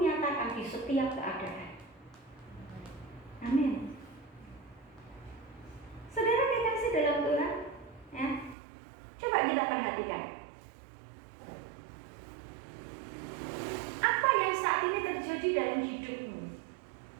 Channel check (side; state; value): left; drops out; at 8.6 s